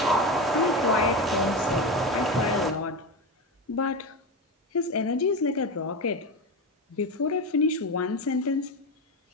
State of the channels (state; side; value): normal; both; correlation 0.19